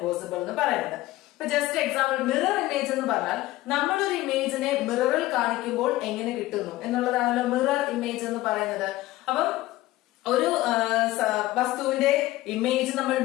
എന്ന് പറയുന്നത്. ഇപ്പൊ ജസ്റ്റ് എക്സാമ്പിൾ, മിറർ ഇമേജ് എന്ന് പറഞ്ഞാൽ നമ്മളൊരു ഇമേജിനെ മിററിൽ കാണിക്കുമ്പോൾ എങ്ങനെ കിട്ടുന്നു എന്നുള്ളതാണല്ലോ മിറർ ഇമേജ് എന്ന് പറയുന്നത്. അപ്പം ഒരു വസ്തുവിന്റെ ഇമേജ് നമ്മൾ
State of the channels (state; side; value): quieter; right; 17.2 dB